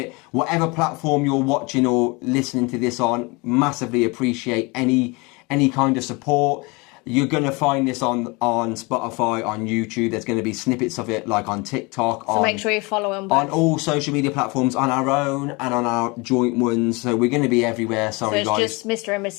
whatever platform you're watching or listening to this on. Massively appreciate any kind of support. You're going to find this on Spotify, on YouTube. There's going to be snippets of it, like on TikTok. So make sure you follow them both. On all social media platforms, on our own and on our joint ones. So we're going to be everywhere. Sorry, so it's guys. just Mr. and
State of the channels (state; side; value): quieter; right; 27.1 dB